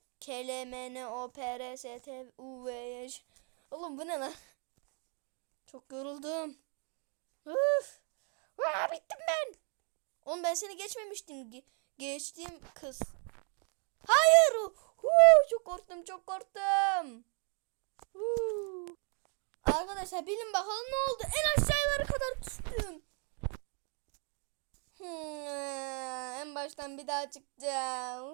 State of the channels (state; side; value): quieter; left; 38.9 dB